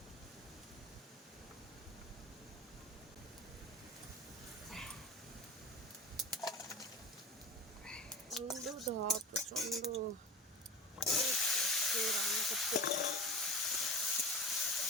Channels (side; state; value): both; normal; correlation 0.34